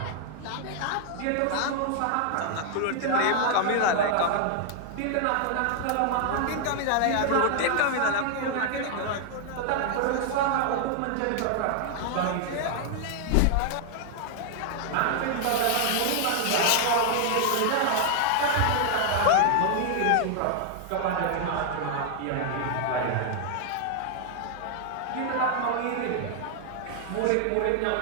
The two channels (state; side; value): different; both; correlation 0.00